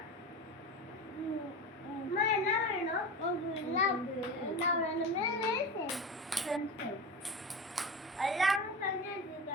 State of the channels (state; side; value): normal; both; correlation 0.26